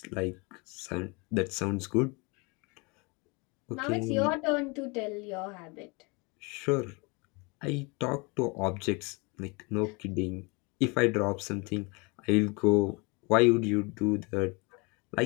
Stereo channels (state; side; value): quieter; right; 29.0 dB